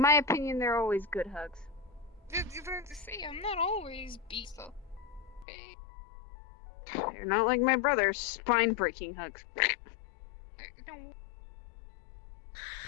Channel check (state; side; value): drops out; right; at 5.5 s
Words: my opinion, they're always good hugs. You have to say I'm not always beast up. Okay. They're not like my brother's spine-breaking hugs. No.